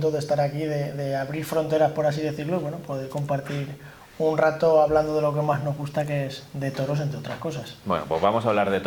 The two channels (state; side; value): identical; both; correlation 1.00